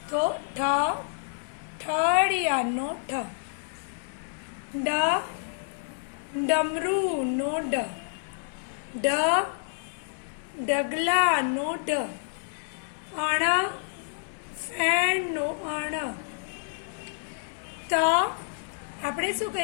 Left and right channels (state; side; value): silent; right; 59 dB below the other